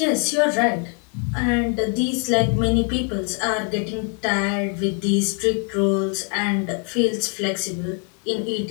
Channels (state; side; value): quieter; right; 40.0 dB